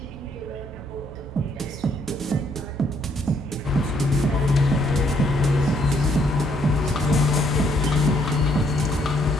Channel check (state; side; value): normal; both; correlation 0.69